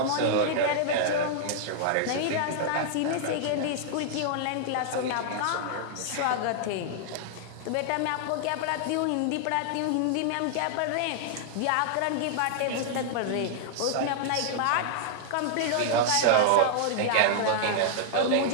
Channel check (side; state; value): both; different; correlation -0.01